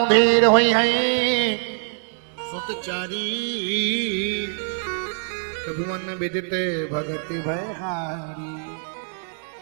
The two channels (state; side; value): silent; left; digital silence